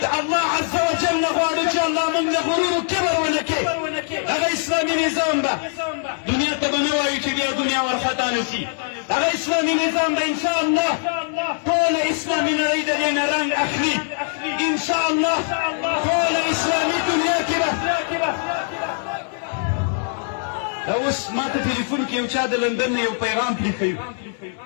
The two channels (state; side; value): silent; right; 64 dB below the other